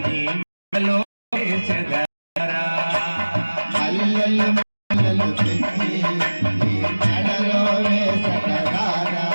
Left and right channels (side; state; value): both; inverted; correlation -1.00